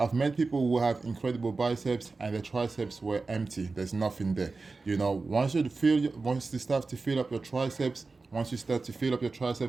met people who have incredible biceps and the triceps were empty. There's nothing there. Once you start to fill up your triceps, once you start to fill up your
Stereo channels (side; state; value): left; quieter; 3.9 dB